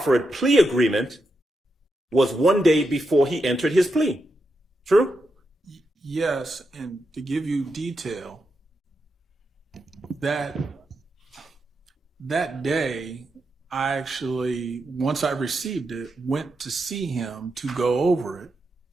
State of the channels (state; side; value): normal; both; correlation 0.86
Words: plea agreement was one day before he entered his plea. True? Yes, and to give you detail, that day, I actually, once I received it, went to see him to go over it.